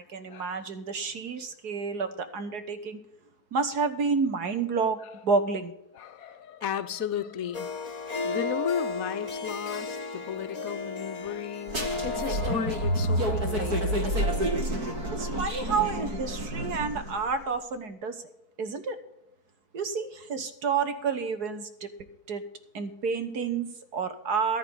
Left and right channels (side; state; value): left; late; 4.6 ms